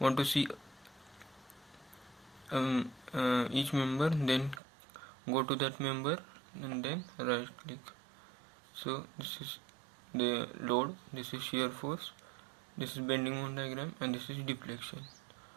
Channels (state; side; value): drops out; left; at 4.6 s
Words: to see each member, then go to that member and then right click. So this is the load, this is shear force, this is bending moment diagram, and this is deflection.